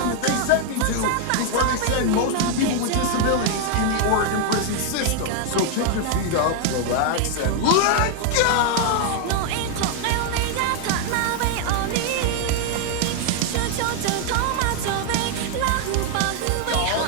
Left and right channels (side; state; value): both; different; correlation 0.00